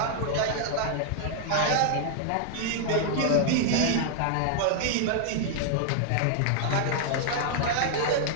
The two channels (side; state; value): both; different; correlation 0.00